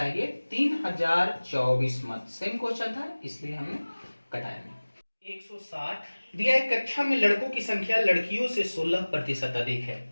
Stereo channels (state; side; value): inverted; both; correlation -1.00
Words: 3024 मत। सेम क्वेश्चन था इसलिए हमने कटाया नहीं। 160 दिया है, कक्षा में लड़कों की संख्या लड़कियों से 16% अधिक है।